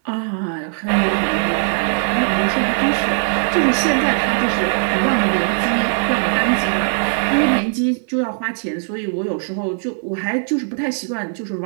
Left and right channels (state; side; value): silent; left; 66 dB below the other